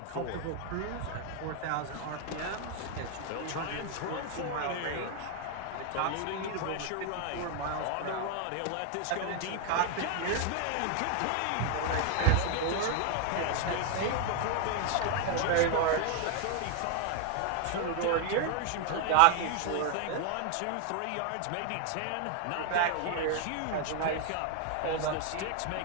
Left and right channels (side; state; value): both; different; correlation 0.00